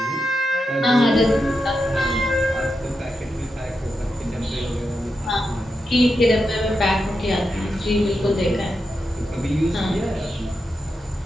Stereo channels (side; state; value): both; normal; correlation 0.87